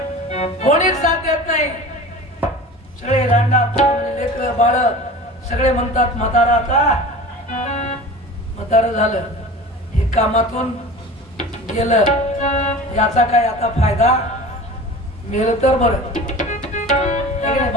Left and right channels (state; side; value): normal; both; correlation 0.37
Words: कोणीच साथ देत नाही. सगळे लांडा लेकर बाळ सगळे म्हणतात म्हातारा आता म्हातारं झालं, हे कामातून गेलं, याचा काय आता फायदा, मेलं तर बरं.